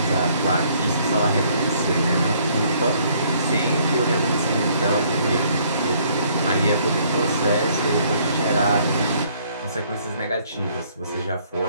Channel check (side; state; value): both; inverted; correlation -0.64